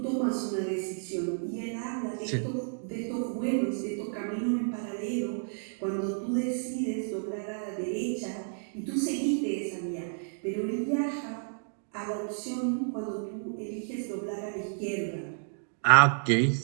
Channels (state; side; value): silent; left; digital silence